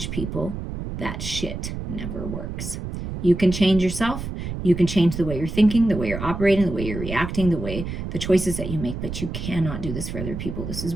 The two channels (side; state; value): right; noise; rumble, 6 dB below the sound